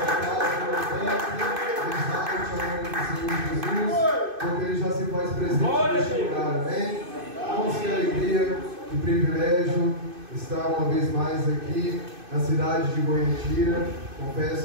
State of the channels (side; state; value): left; late; 2.5 ms